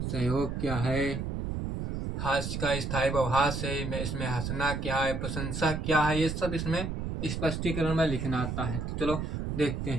सहयोग क्या है, हास्य का स्थायी भाव हास्य है, इसमें हंसना क्या है, प्रशंसा क्या है, ये सब इसमें स्पष्टीकरण में लिखना आता है। तो चलो देखते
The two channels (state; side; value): noise; right; rumble, 3 dB below the sound